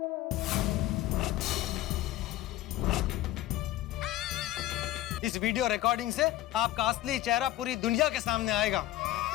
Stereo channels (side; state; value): right; quieter; 14.8 dB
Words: इस वीडियो रिकॉर्डिंग से आपका असली चेहरा पूरी दुनिया के सामने आएगा।